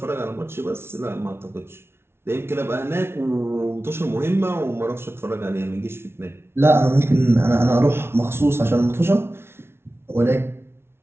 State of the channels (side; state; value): left; late; 0.12 ms